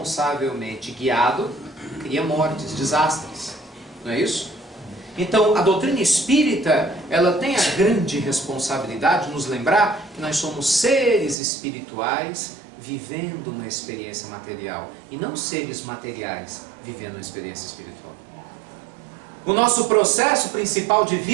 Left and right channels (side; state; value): left; drops out; at 11.4 s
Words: guiado, cria mortes, desastres. Não é isso? Então, a doutrina espírita, ela tem a grande responsabilidade de nos lembrar que nós somos seres espirituais vivendo uma experiência material e não seres materiais vivendo uma experiência espiritual. O nosso processo principal de